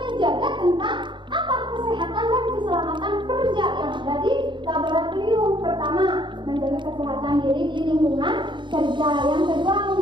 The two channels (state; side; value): late; left; 0.23 ms